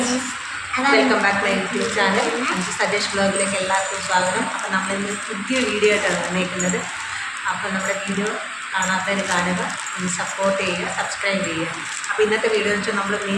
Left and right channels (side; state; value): both; identical; correlation 1.00